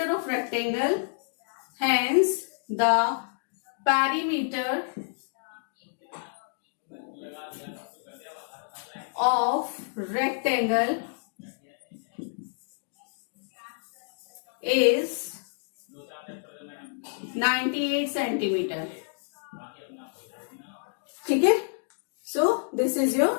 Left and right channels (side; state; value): right; silent; digital silence